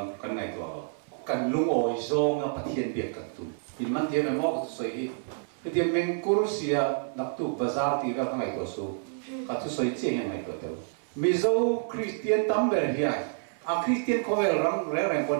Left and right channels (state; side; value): silent; left; 59 dB below the other